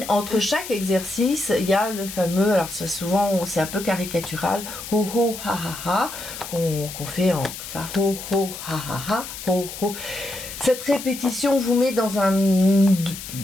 Entre chaque exercice, il y a le fameux, alors souvent c'est un peu caricatural, ho ho ha ha ha, qu'on fait en ça, ho ho ha ha ha, ho ho. Cette répétition vous met dans une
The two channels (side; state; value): left; noise; hiss, 10 dB below the sound